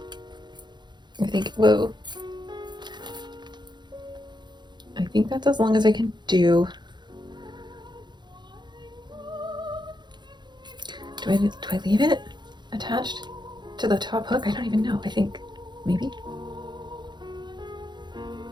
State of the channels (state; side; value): late; left; 0.21 ms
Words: I think, whoa. I think that's as long as I can do. Do I leave it attached to the top hook? I don't even know. I think maybe.